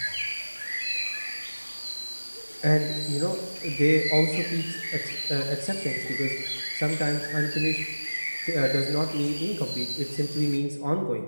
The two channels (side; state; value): both; inverted; correlation -1.00